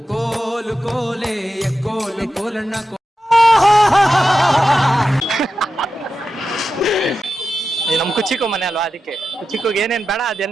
ಕೋಲು ಕೋಲೆ ಕೋಲು ಕೋಲಣ್ಣ. ನಮ್ ಕುಚಿಕು ಮನೆ ಅಲ್ವಾ, ಅದಕ್ಕೆ ಕುಚಿಕೋಗಿ ಏನೇನ್ ಬೇಡ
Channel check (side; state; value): both; normal; correlation 0.91